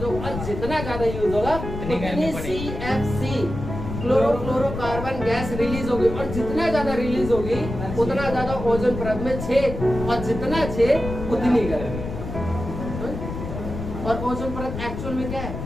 होगा, और जितना ज्यादा यूज होगा उतनी CFC क्लोरोफ्लोरोकार्बन गैस रिलीज होगी, और जितना ज्यादा रिलीज होगी उतना ज्यादा ओजोन परत में छेद, और जितना छेद उतनी गर्मी। और ओजोन परत एक्चुअल में क्या है,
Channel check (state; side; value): noise; left; rumble, 7 dB below the sound